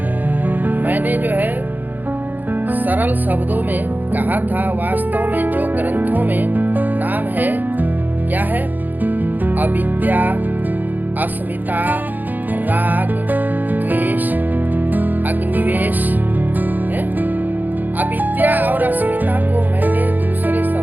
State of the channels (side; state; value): left; late; 0.086 ms